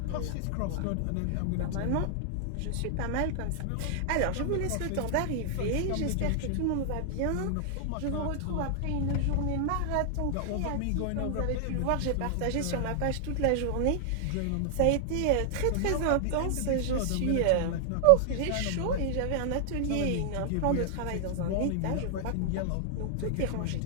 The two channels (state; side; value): different; both; correlation 0.00